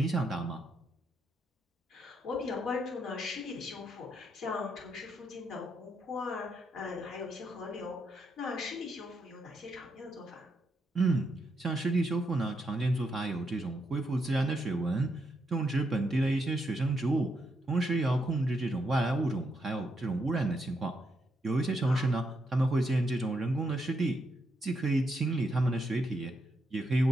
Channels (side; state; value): both; normal; correlation 0.80